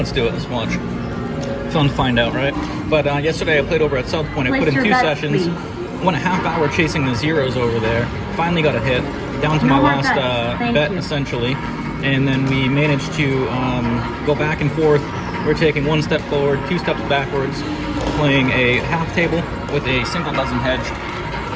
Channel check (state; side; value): identical; both; correlation 1.00